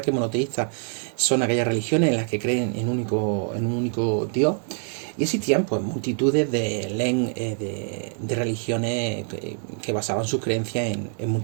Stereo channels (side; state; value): left; silent; 62 dB below the other